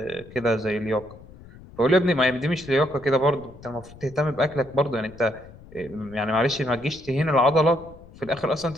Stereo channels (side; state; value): left; noise; rumble, 20 dB below the sound